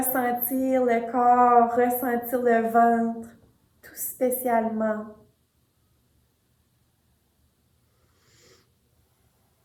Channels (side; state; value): both; identical; correlation 1.00